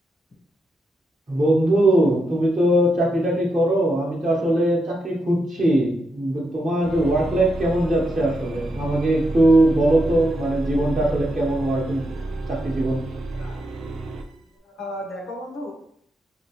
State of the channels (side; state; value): both; normal; correlation 0.83